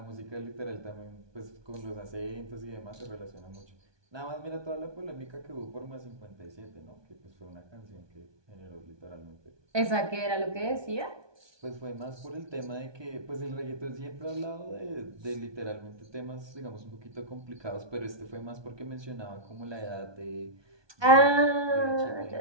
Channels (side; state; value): left; late; 1.2 ms